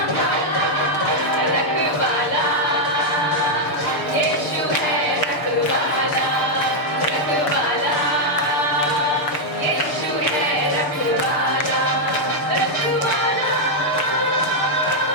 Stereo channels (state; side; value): late; right; 6.7 ms